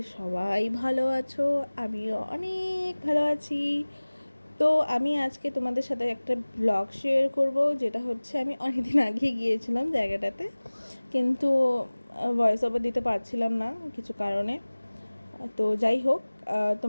সবাই ভালো আছো। আমিও অনেক ভালো আছি। তো আমি আজকে তোমাদের সাথে একটা ব্লগ শেয়ার করব, যেটা হচ্ছে আমি অনেকদিন আগে গিয়েছিলাম জায়গাটাতে, কিন্তু ভয়েস ওভার দিতে পারছিলাম না কিছু কারণে। তো যাই হোক,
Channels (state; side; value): inverted; both; correlation -1.00